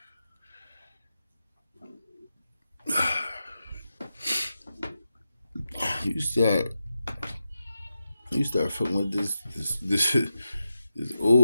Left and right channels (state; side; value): inverted; both; correlation -0.89